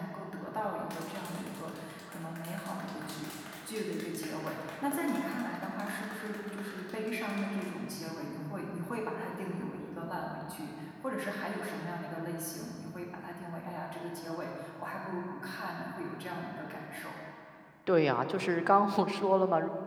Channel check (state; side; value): identical; both; correlation 1.00